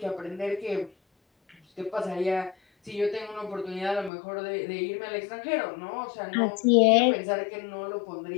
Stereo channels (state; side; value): drops out; right; at 4.1 s